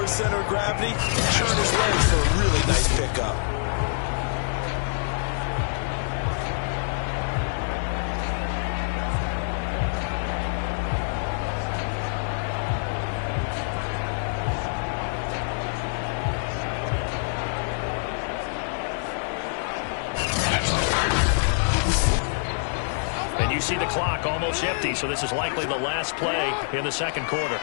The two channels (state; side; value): silent; right; digital silence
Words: his center of gravity and turn his legs for a really nice pickup. See the clock almost empty, so this is likely the last play in the second quarter.